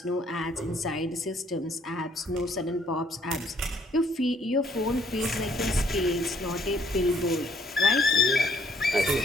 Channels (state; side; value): normal; both; correlation 0.66